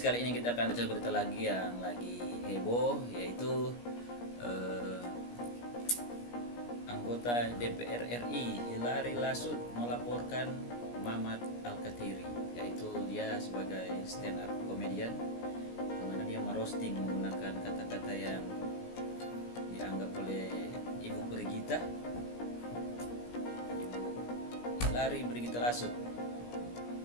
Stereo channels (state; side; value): late; right; 17 ms